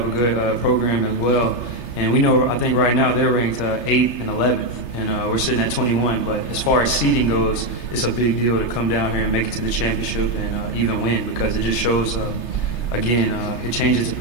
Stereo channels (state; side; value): late; right; 3.3 ms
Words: a good program as well. And we know, I think right now they're ranked 8th and 11th, and we're sitting at 21. But as far as seeding goes, it's a big deal to come down here and make it to the championship and even win, because it just shows, again, it changes the